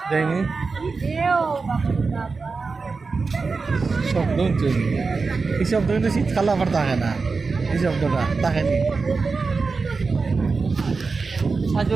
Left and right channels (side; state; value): left; quieter; 4.4 dB